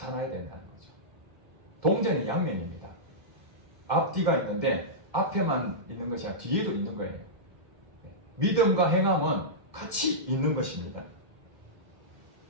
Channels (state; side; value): late; left; 2.1 ms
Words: 된다는 거죠. 동전의 양면입니다. 앞뒤가 있는데 앞에만 있는 것이 아니라 뒤에도 있는 거예요. 믿음과 행함은 같이 있는 것입니다.